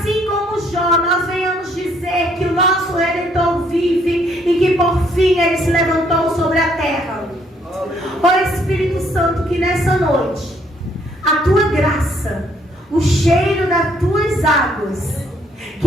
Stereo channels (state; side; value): normal; both; correlation 0.67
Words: como Jó, nós venhamos dizer o nosso Redentor vive e que por fim Ele se levantou sobre a terra. Ó Espírito Santo, que nessa noite a Tua graça, o cheiro das Tuas águas,